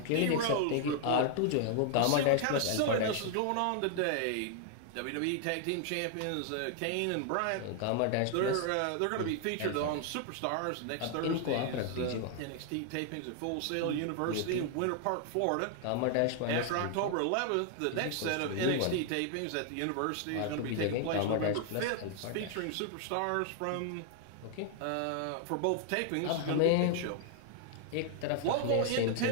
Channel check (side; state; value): both; different; correlation 0.00